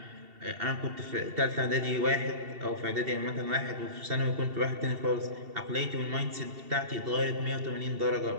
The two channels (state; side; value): late; left; 2.7 ms